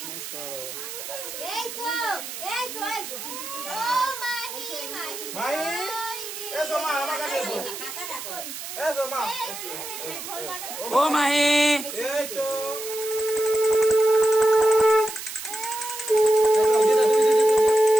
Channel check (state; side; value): noise; right; hiss, 9 dB below the sound